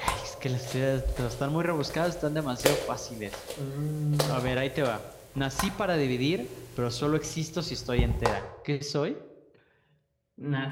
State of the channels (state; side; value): identical; both; correlation 1.00